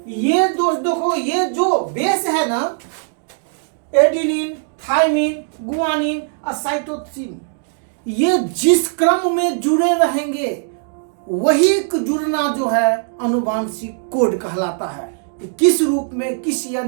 ये देखो ये जो बेस है ना, एडिनिन, थाइमिन, गुआनिन और साइटोसिन, ये जिस क्रम में जुड़े रहेंगे वही जुड़ना जो है अनुवांशिक कोड कहलाता है। किस रूप में, किस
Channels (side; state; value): left; silent; digital silence